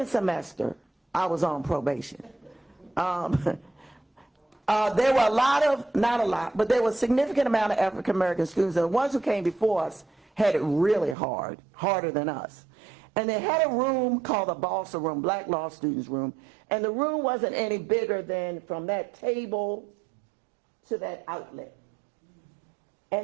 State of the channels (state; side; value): drops out; left; at 11.2 s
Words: semester, I was on probation. There were a lot of, not a lot, but there was a significant amount of African American students, and the ones who came before us had it really hard, harder than us. And they had a room called the Balsa Room, Black Law Students Room, and the room wasn't any bigger than from that table to that outlet.